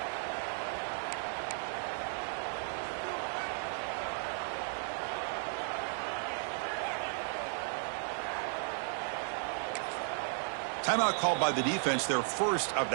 Timeout called by the defense, their first of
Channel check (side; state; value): left; silent; 54 dB below the other